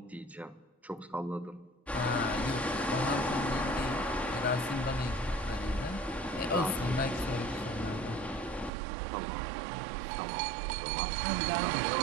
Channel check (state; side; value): drops out; left; at 8.7 s